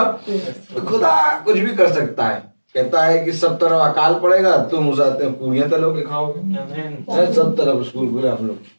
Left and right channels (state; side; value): inverted; both; correlation -1.00